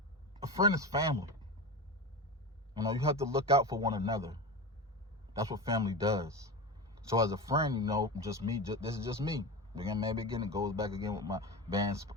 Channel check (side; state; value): both; normal; correlation 0.24